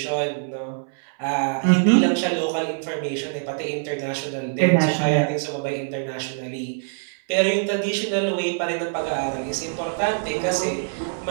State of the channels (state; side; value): silent; left; 61 dB below the other